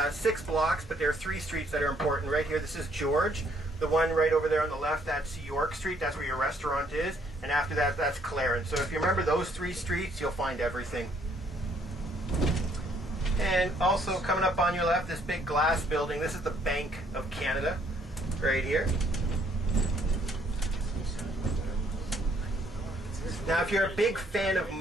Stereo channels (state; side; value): normal; both; correlation 0.66